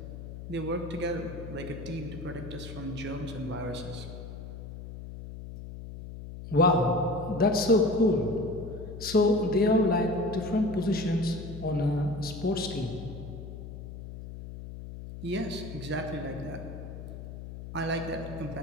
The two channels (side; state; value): left; noise; hum, 11 dB below the sound